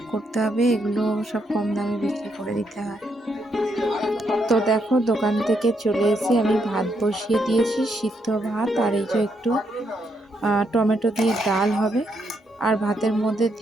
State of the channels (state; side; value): normal; both; correlation 0.77